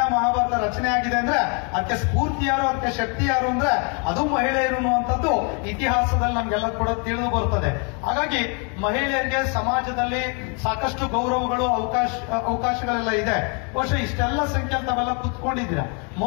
ಮಹಾಭಾರತ ರಚನೆ ಆಗಿದೆ ಅಂದ್ರೆ ಅದಕ್ಕೆ ಸ್ಫೂರ್ತಿ ಯಾರು, ಅದಕ್ಕೆ ಶಕ್ತಿ ಯಾರು ಅಂದ್ರೆ ಅದು ಮಹಿಳೆಯರು ಅನ್ನುವಂಥದ್ದು ಇತಿಹಾಸದಲ್ಲಿ ನಮ್ಗೆಲ್ಲ ಕೂಡ ತಿಳಿದು ಬರ್ತದೆ. ಹಾಗಾಗಿ ಮಹಿಳೆಯರಿಗೆ ಸಮಾಜದಲ್ಲಿ ಸಾಕಷ್ಟು ಗೌರವಗಳು, ಅವಕಾಶಗಳೆಲ್ಲ ಇದೆ. ಬಹುಶಃ ಇಷ್ಟೆಲ್ಲ ಸಂಖ್ಯೆ ತಾವೆಲ್ಲ ಕುತ್ಕೊಂಡಿದ್ದೀರಾ.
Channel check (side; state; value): right; quieter; 36.0 dB